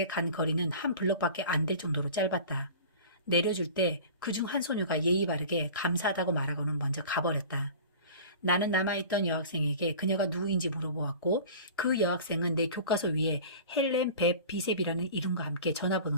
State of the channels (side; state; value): both; inverted; correlation -0.39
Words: 간 거리는 한 블럭밖에 안 될 정도로 짧았다. 내려줄 때 그중 한 소녀가 예의 바르게 감사하다고 말하고는 먼저 가버렸다. 나는 남아있던 여학생에게 그녀가 누구인지 물어보았고 그 여학생은 내 교과서 위에 헬렌 벳 비셉이라는 이름과 함께